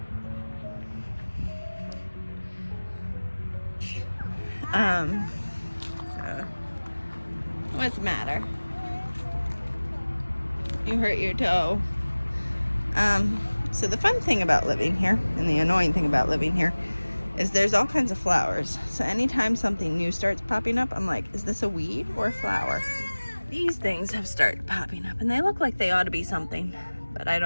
So what's the matter? You hurt your toe. So the fun thing about living here, and the annoying thing about living here, is there's all kinds of flowers. So anytime something new starts popping up, I'm like, is this a weed or a flower? These things have started popping up, and they look like they ought to be something, but I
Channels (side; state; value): both; inverted; correlation -1.00